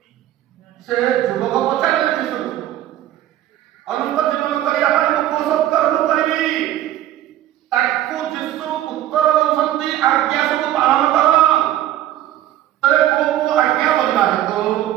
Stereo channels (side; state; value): left; quieter; 13.1 dB